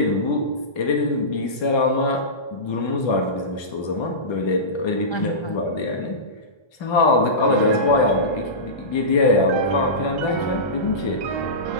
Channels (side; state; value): right; late; 1.3 ms